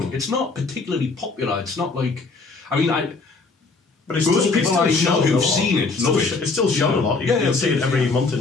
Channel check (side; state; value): right; quieter; 4.0 dB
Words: it's not particularly popular. It's not like... I mean, but it's most still, people I know who've seen it love it. It's still shown a lot. You can see it every month